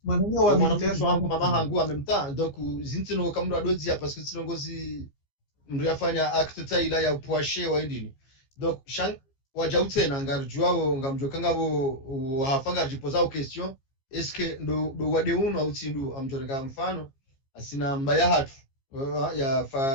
mananya wa militaire wangu mama hangu amemta donc zintino kamro adozi ya parce que sinongozi mndu yafanya acte taila ya poache wa endini donc shang wajautse na ngarjuao ngamjokanga bo hafanga jipoza au question est-ce que ndo wade uno au tindu amjoreka mfano asina mbaya hatu ya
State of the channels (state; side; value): late; right; 15 ms